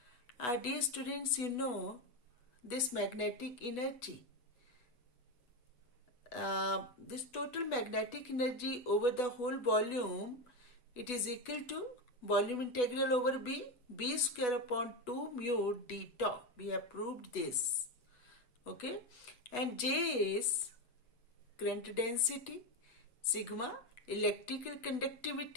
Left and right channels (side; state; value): right; late; 8.1 ms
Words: Dear students, you know this magnetic energy. This total magnetic energy over the whole volume, it is equal to volume integral over B square upon 2 mu d tau. We have proved this. Okay. And J is current density, sigma, electrical